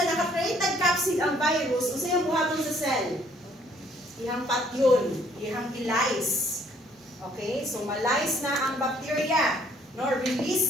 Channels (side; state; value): both; normal; correlation 0.63